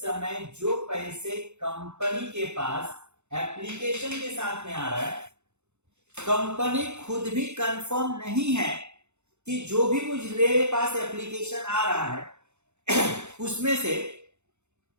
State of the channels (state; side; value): late; left; 0.82 ms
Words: जो पैसे कंपनी के पास एप्लीकेशन के साथ में आ रहा है, कंपनी खुद भी कंफर्म नहीं है कि जो भी मुझे पास एप्लीकेशन आ रहा है उसमें से